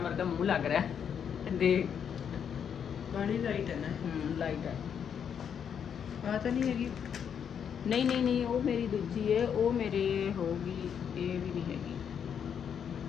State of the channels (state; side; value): quieter; right; 7.9 dB